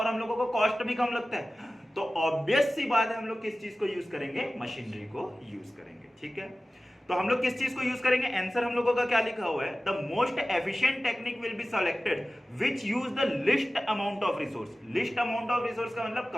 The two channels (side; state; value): both; normal; correlation 0.96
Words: हम लोगों को कॉस्ट भी कम लगता है। तो ऑब्वियस सी बात है हम लोग किस चीज को यूज करेंगे, मशीनरी को यूज करेंगे। ठीक है, तो हम लोग किस चीज को यूज करेंगे, आंसर हम लोगों का क्या लिखा हुआ है, the most efficient technique will be selected which use the list amount of resource. List amount of resource का मतलब